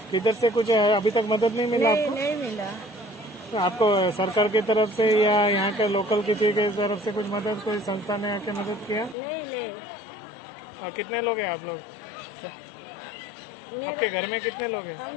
इधर से कुछ अभी तक मदद नहीं मिला नहीं आपको? नहीं मिला। तो आपको सरकार की तरफ से या यहाँ के लोकल किसी की तरफ से कुछ मदद, कोई संस्था ने आके मदद किया? नहीं नहीं। और कितने लोग हैं आप लोग? आपके घर में कितने लोग हैं? हम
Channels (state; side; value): drops out; right; at 9.2 s